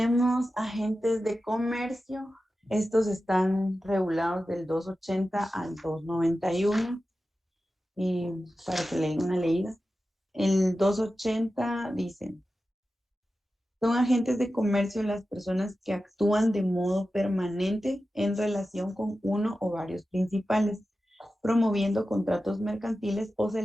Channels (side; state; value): both; normal; correlation 0.93